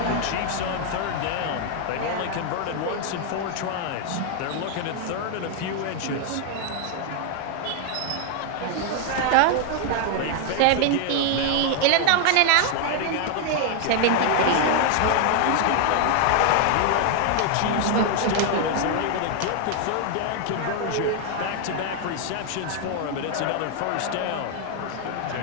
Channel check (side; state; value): both; different; correlation 0.00